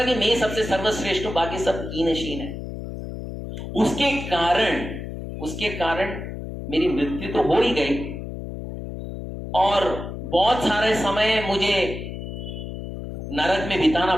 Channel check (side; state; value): left; noise; hum, 8 dB below the sound